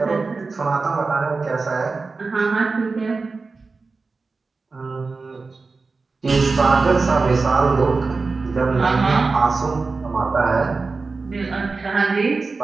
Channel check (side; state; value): left; quieter; 4.1 dB